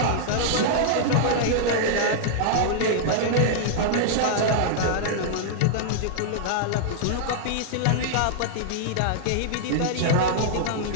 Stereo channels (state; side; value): different; both; correlation -0.01